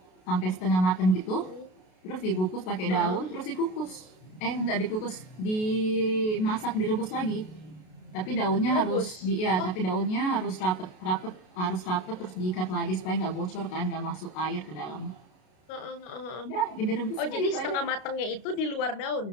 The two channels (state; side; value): late; right; 33 ms